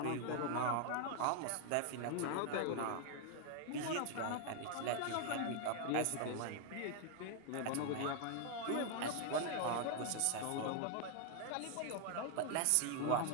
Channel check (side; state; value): both; different; correlation 0.00